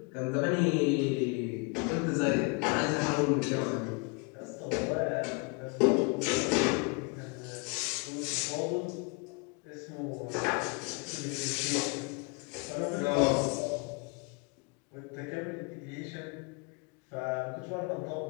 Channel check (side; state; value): right; quieter; 30.9 dB